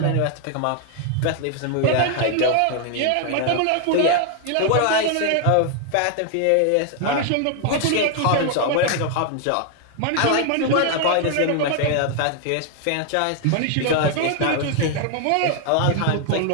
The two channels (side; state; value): both; different; correlation 0.00